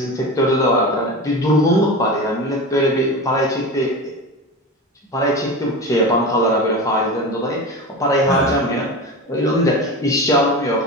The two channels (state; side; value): normal; both; correlation 0.27